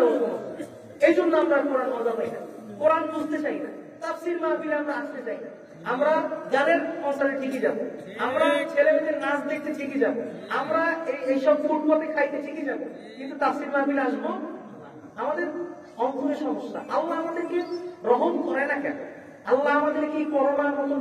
সমস্যা। এই জন্য আমরা কোরআন মজা পাই না, কোরআন বুঝতে চাই না, তাফসীর মাহফিলে আমরা আসতে চাই না। আমরা গানের কনসার্টে ঠিকই যাবো, আমরা ছেলেমেয়েদের নাচ দেখতে ঠিকই যাবো, আমরা এইসব ফুটপাতে খাইতে ঠিকই যাবো, কিন্তু তাফসীর মাহফিলে আসবো আমাদের অন্তরে সমস্যা। আল্লাহ আমাদেরকে রহম করে না কেন? আল্লাহ আমাদেরকে করোনার মতন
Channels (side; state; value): both; identical; correlation 1.00